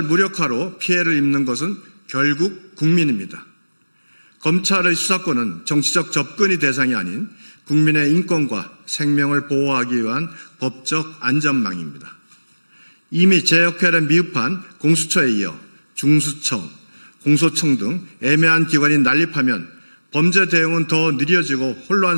무력화로 피해를 입는 것은 결국 국민입니다. 검찰의 수사권은 정치적 접근이 대상이 아닌 국민의 인권과 생명을 보호하기 위한 법적 안전망입니다. 이미 제 역할에 미흡한 공수처에 이어 중수청, 공소청 등 애매한 기관이 난립하면 범죄 대응은 더 느려지고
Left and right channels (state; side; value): inverted; both; correlation -1.00